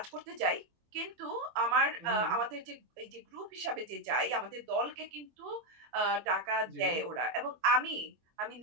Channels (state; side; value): late; left; 24 ms